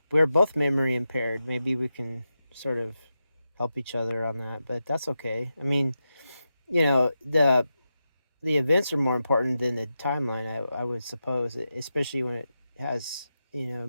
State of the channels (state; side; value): inverted; both; correlation -0.89